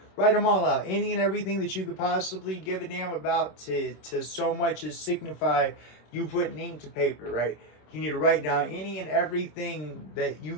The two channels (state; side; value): late; right; 26 ms